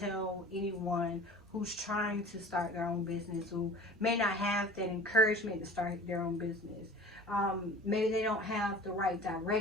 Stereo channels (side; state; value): both; normal; correlation 0.42